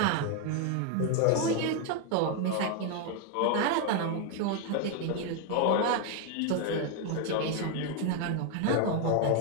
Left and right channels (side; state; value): both; different; correlation 0.01